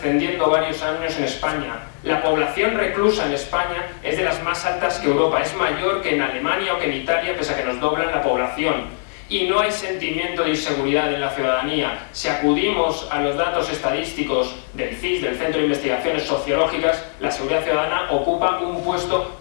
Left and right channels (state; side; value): silent; right; 60 dB below the other